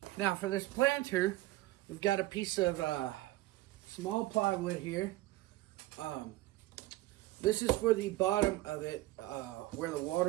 Now for this planter, we've got a piece of small plywood here. This is for the bottom of it, where the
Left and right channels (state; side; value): quieter; left; 17.4 dB